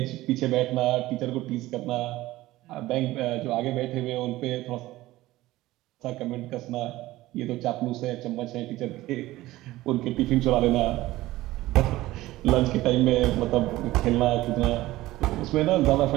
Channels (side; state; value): left; quieter; 17.2 dB